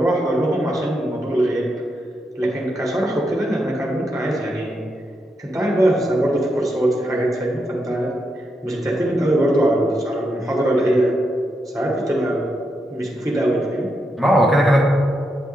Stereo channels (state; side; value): normal; both; correlation 0.83